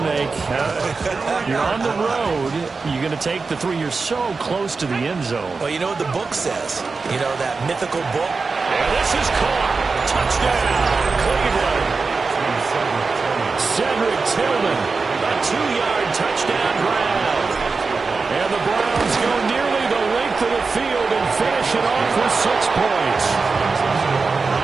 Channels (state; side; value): quieter; left; 4.4 dB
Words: You're on the road. You're going to take the 3. You're so close to the end zone. Well, you know what the book says. You know, that mythical book. And this is caught. Touchdown, Cleveland. Cedric Tillman, a 2-yard touchdown grab. And the Browns go nearly the length of the field and finish it off with 6 points.